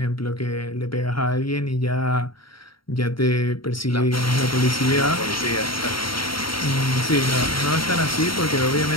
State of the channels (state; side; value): late; right; 0.74 ms